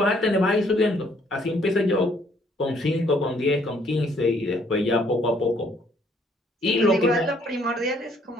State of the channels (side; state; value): both; normal; correlation 0.65